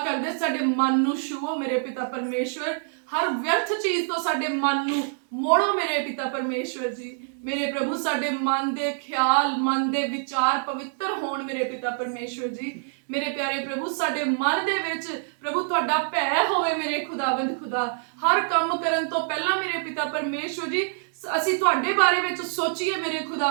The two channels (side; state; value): left; silent; digital silence